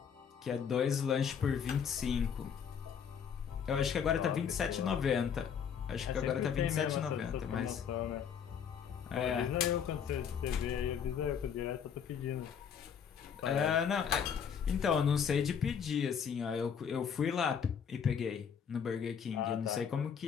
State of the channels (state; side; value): quieter; right; 7.5 dB